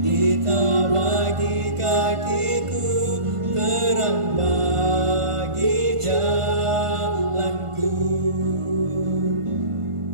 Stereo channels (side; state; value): left; late; 1.5 ms